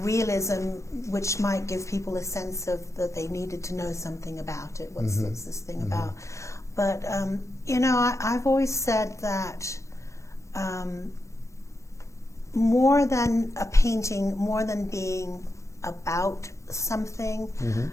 realism, which might give people a sense of that they needed to know something about it. What's this thing about? But I've always said that more than a painting, more than being about something,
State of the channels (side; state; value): right; late; 0.15 ms